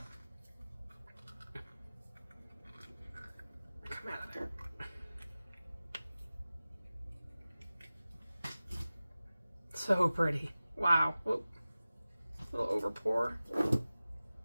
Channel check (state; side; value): inverted; both; correlation -0.97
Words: Come out of there. So pretty. Wow. Whoop. A little over pour.